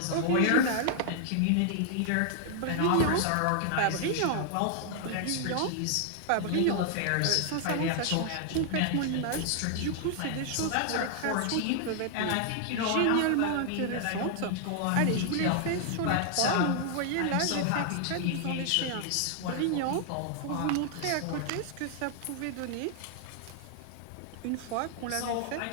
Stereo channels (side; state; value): both; different; correlation 0.00